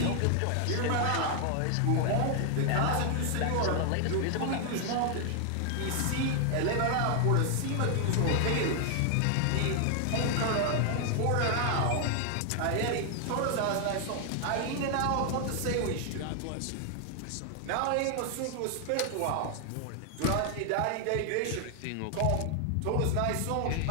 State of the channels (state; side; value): different; both; correlation 0.00